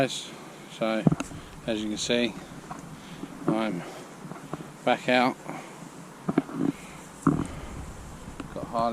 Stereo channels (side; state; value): both; identical; correlation 1.00